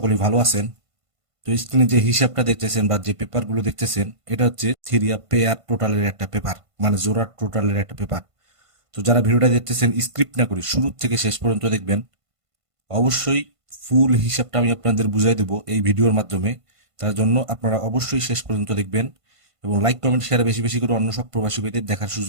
ভালো আছেন। তো স্ক্রিনে যে হিসাবটা দেখতেছেন বা যে পেপারগুলো দেখতেছেন, এটা হচ্ছে থিরিয়া পেয়ার টোটালের একটা পেপার, মানে জোড়া টোটালের একটা পেপার। তো যারা ভিডিওটা দেখতেছেন, স্ক্রিপ্ট না করে শুরু থেকে শেষ পর্যন্ত দেখবেন। অবশ্যই ফুল হিসাবটা আমি আপনাদের বুঝাই দেবো এই ভিডিওর মাধ্যমে। তার জন্য আপনারা অবশ্যই শেষ পর্যন্ত দেখবেন এবং লাইক কমেন্ট শেয়ার বেশি বেশি করে অন্য সব প্রবাসী ভাইদের দেখার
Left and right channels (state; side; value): late; left; 1.5 ms